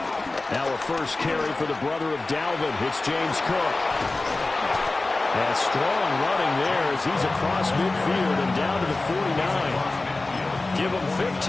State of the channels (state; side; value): quieter; right; 3.2 dB